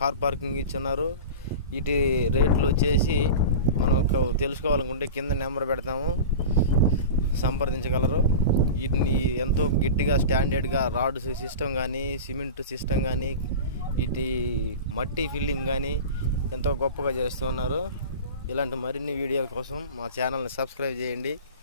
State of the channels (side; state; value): both; inverted; correlation -0.30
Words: పార్కింగ్ ఇచ్చున్నారు. వీటి రేట్లు వచ్చేసి మనకు తెలుసుకోవాలనుకుంటే కింద నెంబర్ పెడతాము, సంప్రదించగలరు. వీటిని ఎంతో గట్టిగా స్టాండర్డ్గా రాడ్ సిస్టమ్ కానీ, సిమెంట్ సిస్టమ్ కానీ, వీటి మట్టి ఫిల్లింగ్ కానీ ఎంతో గొప్పగా చేస్తున్నారు. ఇలాంటి మరిన్ని వీడియోల కోసం మా ఛానల్ని సబ్స్క్రైబ్ చేయండి,